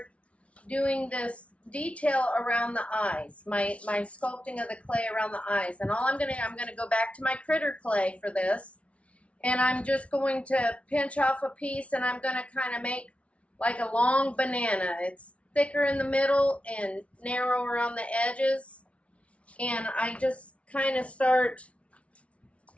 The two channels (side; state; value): right; late; 0.063 ms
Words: doing this detail around the eyes, my sculpting of the clay around the eyes. And I'm gonna go back to my critter clay for this, and I'm just going to pinch off a piece, and I'm gonna kind of make like a long banana. It's thicker in the middle and narrower on the edges, and I just kind of start